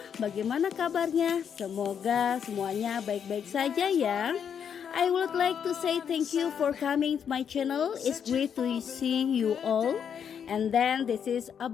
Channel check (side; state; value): right; quieter; 7.8 dB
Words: Bagaimana kabarnya? Semoga semuanya baik-baik saja ya. I would like to say thank you for coming to my channel. It's great to see you all. And then this is